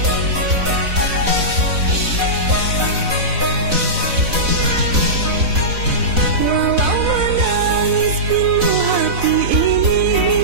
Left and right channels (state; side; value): late; left; 4.0 ms